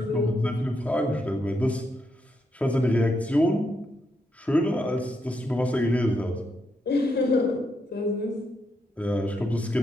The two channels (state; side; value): normal; both; correlation 0.80